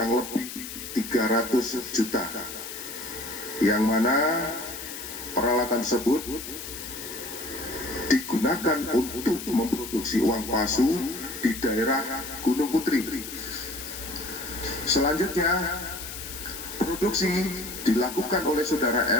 lebih 300 juta, yang mana peralatan tersebut digunakan untuk memproduksi uang palsu di daerah Gunung Putri. Selanjutnya, produksi dilakukan oleh saudara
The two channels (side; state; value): left; noise; hiss, 9 dB below the sound